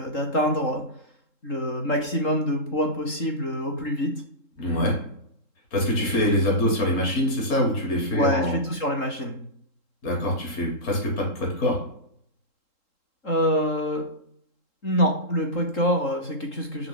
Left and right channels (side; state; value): right; late; 3.7 ms